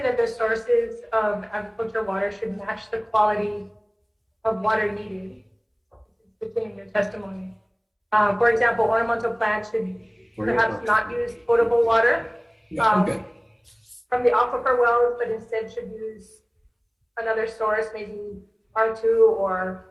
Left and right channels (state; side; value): identical; both; correlation 1.00